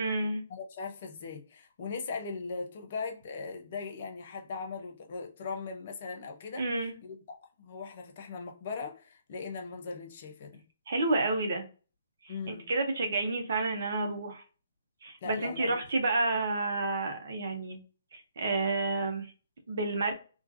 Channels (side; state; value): both; inverted; correlation -0.71